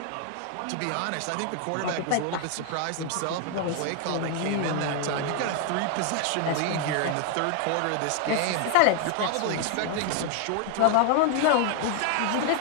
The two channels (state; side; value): different; both; correlation 0.00